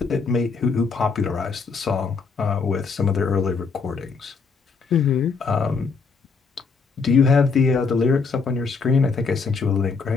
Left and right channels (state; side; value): quieter; right; 4.9 dB